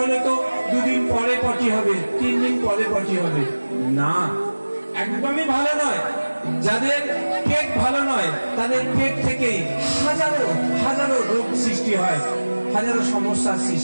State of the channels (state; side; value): inverted; both; correlation -1.00